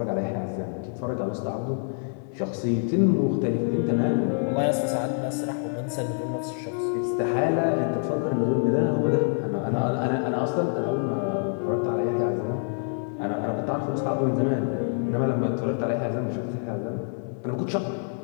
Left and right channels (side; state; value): right; silent; digital silence